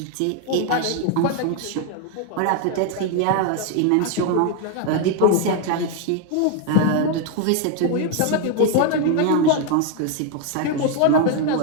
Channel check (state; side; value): different; both; correlation 0.01